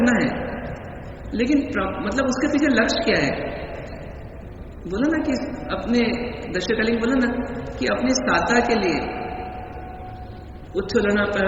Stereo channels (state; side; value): identical; both; correlation 1.00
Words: है, लेकिन मतलब उसके पीछे लक्ष्य क्या है? बोला ना कि अपने दशकालिक बोला ना कि अपनी साता के लिए उच्छलना